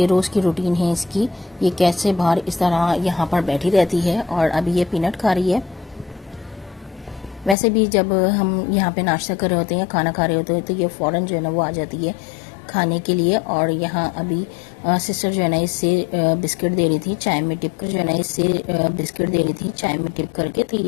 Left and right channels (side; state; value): right; drops out; at 7.6 s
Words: रोज़ की रूटीन है इसकी, ये कैसे बाहर इस तरह यहाँ पर बैठी रहती है और अभी ये पीनट खा रही है। वैसे भी जब हम यहाँ पे नाश्ता कर रहे होते हैं या खाना खा रहे होते हैं तो ये फ़ौरन जो है ना वो आ जाती है खाने के लिए। और यहाँ अभी सिस्टर जो है ना इससे बिस्किट दे रही थी चाय में डिप करके, तो